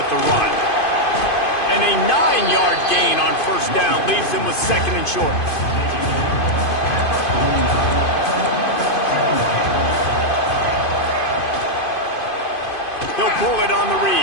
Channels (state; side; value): late; right; 2.5 ms